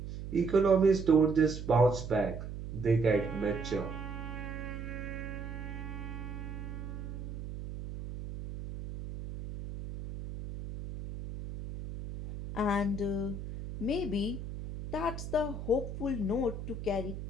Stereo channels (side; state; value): right; noise; hum, 8 dB below the sound